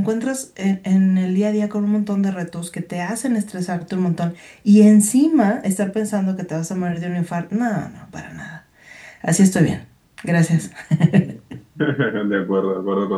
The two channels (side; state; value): both; identical; correlation 1.00